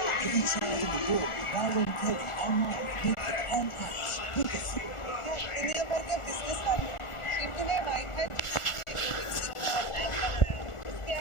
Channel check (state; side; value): late; right; 1.4 ms